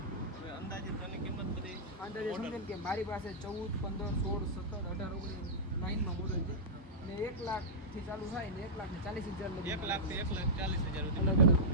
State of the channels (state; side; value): normal; both; correlation -0.12